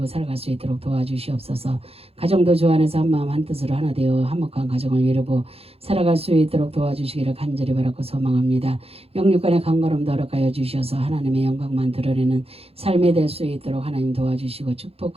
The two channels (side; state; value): left; late; 0.29 ms